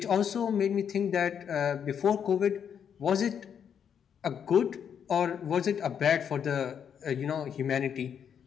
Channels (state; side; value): quieter; right; 8.0 dB